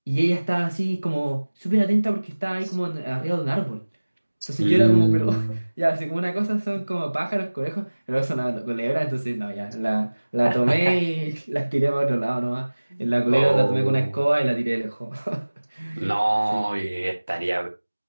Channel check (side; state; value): both; inverted; correlation -1.00